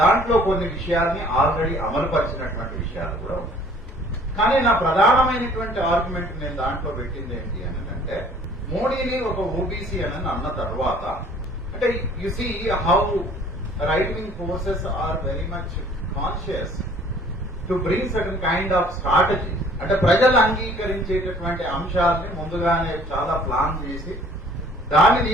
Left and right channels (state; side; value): normal; both; correlation 0.54